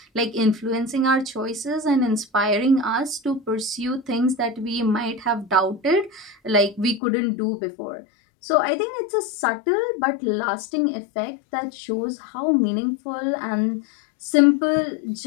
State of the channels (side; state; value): right; drops out; at 7.0 s